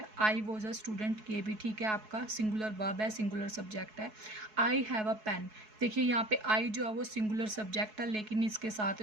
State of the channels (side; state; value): left; late; 4.7 ms